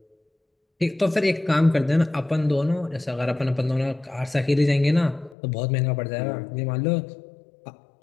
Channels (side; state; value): right; drops out; at 5.4 s